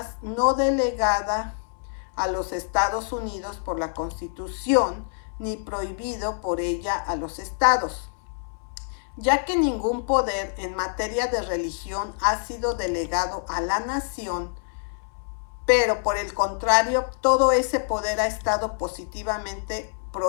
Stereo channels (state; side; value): silent; right; 61 dB below the other